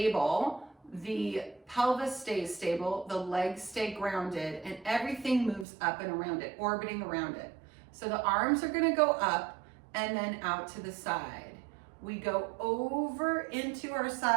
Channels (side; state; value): left; drops out; at 5.7 s